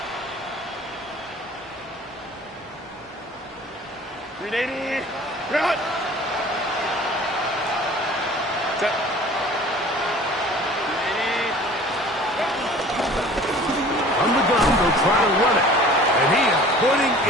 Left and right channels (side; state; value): both; normal; correlation 0.46